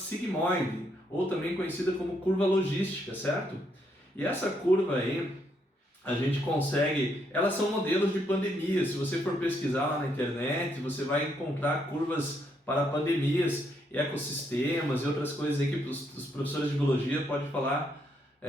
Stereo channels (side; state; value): both; normal; correlation 0.75